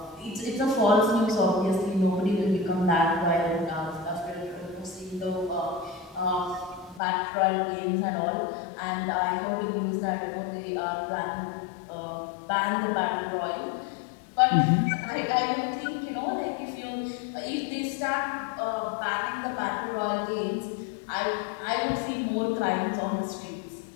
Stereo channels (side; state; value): right; drops out; at 7.0 s